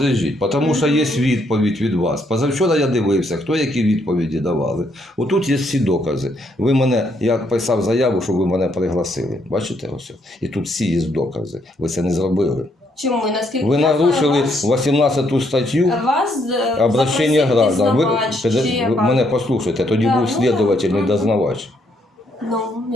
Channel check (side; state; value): both; normal; correlation 0.72